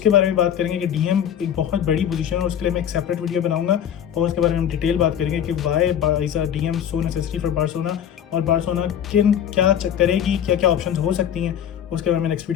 बारे में बात करेंगे कि डीएम एक बहुत बड़ी पोजीशन है, और उसके लिए मैं एक सेपरेट वीडियो बनाऊंगा, और उसके बारे में हम डिटेल बात करेंगे कि why is a DM so necessary for Barcelona, और बार्सिलोना किन क्या करेगी, क्या क्या ऑप्शंस हो सकती हैं, उसके बारे में नेक्स्ट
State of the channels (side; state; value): right; quieter; 9.4 dB